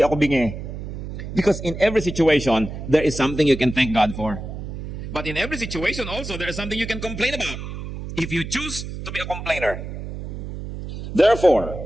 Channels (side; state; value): right; noise; hum, 8 dB below the sound